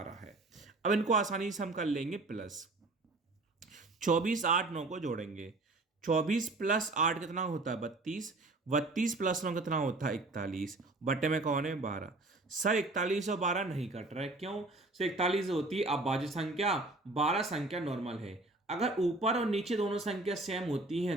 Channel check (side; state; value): left; quieter; 3.0 dB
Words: है। अब इनको आसानी से हम कर लेंगे प्लस। 24 8 9 को जोड़ेंगे, 24 प्लस 8 कितना होता है 32, 32 प्लस 9 कितना होता है 41, बटे में कौन है 12। सर 41 और 12 नहीं कट रहा है, क्यों सर, 41 होती है अभाज्य संख्या, 12 संख्या नॉर्मल है। अगर ऊपर और नीचे दोनों संख्या सेम होती